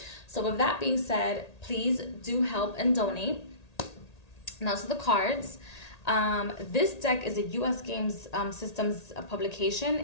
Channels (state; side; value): late; right; 1.8 ms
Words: So with that being said, please do help and donate. Now to the cards. This deck is a U.S. Games Systems